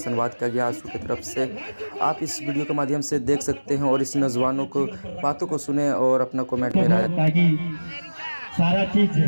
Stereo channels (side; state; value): both; inverted; correlation -1.00